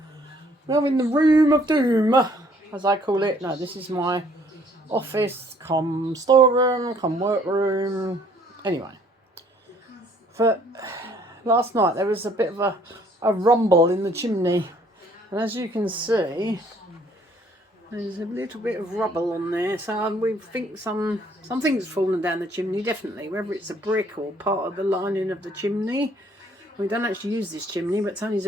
Now in the room of doom, as I call it. No, this is my office, come storeroom, come workroom. Anyway, for last night there was a bit of a rumble in the chimney, and as you can see, there's a little bit of rubble on there. So we think something's fallen down the chimney, definitely. Whether it's a brick or part of the lining of the chimney. We don't actually use this chimney, but Tony's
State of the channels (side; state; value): both; normal; correlation 0.62